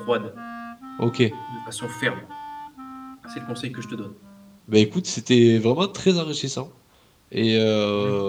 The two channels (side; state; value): both; identical; correlation 1.00